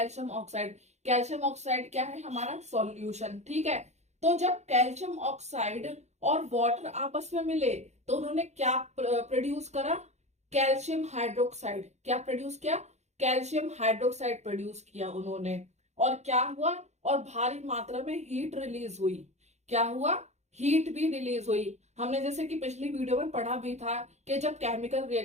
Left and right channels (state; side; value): late; left; 0.33 ms